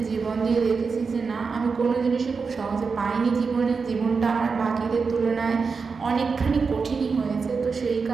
জীবন দিয়ে দেখেছি যে না, আমি কোনো জিনিসই খুব সহজে পাইনি জীবনে। জীবনটা আমার বাকিদের তুলনায় অনেকখানি কঠিনই হয়েছে। তো সেই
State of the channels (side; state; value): left; quieter; 5.0 dB